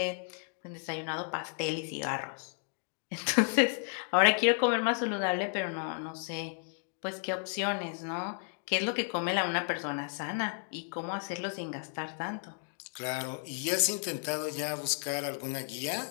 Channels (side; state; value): right; silent; 56 dB below the other